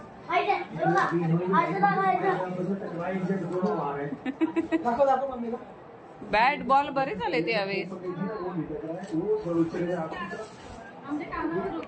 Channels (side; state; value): both; identical; correlation 1.00